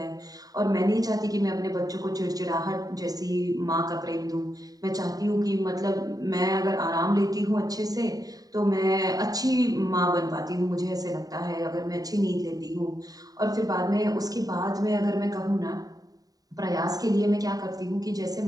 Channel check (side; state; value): left; late; 0.18 ms